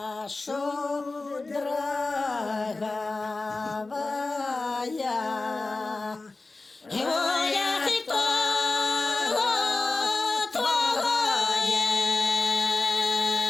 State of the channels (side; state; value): right; quieter; 3.4 dB